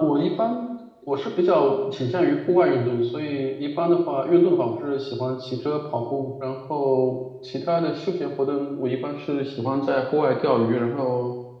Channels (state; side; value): identical; both; correlation 1.00